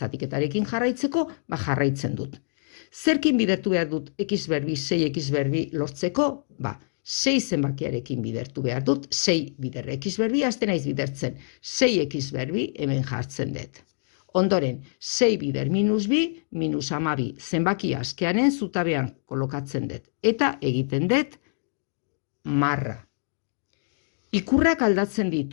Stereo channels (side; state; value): right; silent; digital silence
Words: jarraitzeko, jarraitzen dut. Zerkin bidertu behar dut x berbi, 6x berbi lortzeko? 6 zenbakiarekin bidertu behar dut, 6 bider x berbi, azten naiz bidertzen. 6x berbi hemen jartzen dut. Ondoren, 6 bider minus bi, minus 12 zenbaki askearen zutabean kolokatzen dut. Eta egiten dut marra. Ikurrak aldatzen